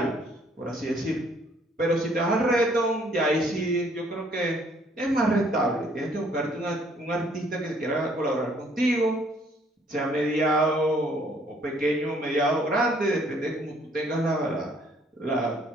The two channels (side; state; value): both; normal; correlation 0.63